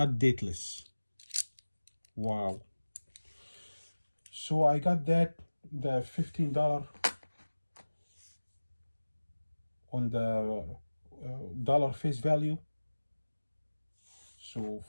dateless. Wow. So I got the $15 on the dollar face value. So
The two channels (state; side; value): inverted; both; correlation -1.00